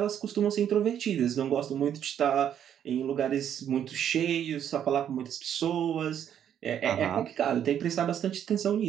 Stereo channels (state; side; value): quieter; left; 9.5 dB